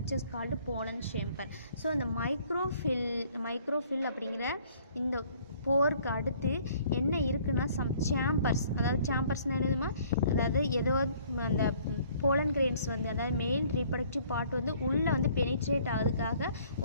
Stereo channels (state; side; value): inverted; both; correlation -0.58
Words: called pollen chamber. So அந்த மைக்ரோஃபில் அப்படிங்கிற இந்த போருக்கு அடுத்து என்ன இருக்குன்னா சேம்பர்ஸ், அதாவது சேம்பர்ஸ்னால் என்னதுமா, அதாவது ஏதோ அந்த போலன் கிரெயின்ஸ் வந்து, அதாவது மேல் ரீப்ரடக்டிவ் பார்ட் வந்து உள்ளே வந்து பெனிட்ரேட் ஆகுறதுக்காக